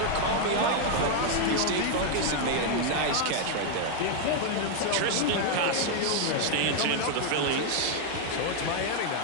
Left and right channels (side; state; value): both; different; correlation 0.00